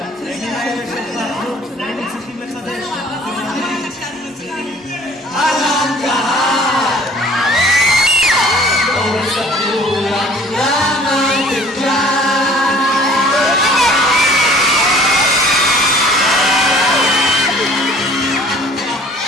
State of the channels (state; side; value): normal; both; correlation 0.52